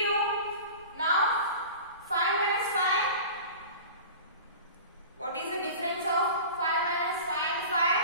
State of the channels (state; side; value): inverted; both; correlation -0.37